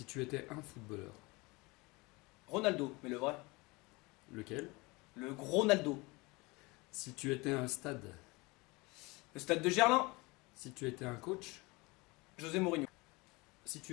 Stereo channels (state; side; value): quieter; right; 24.7 dB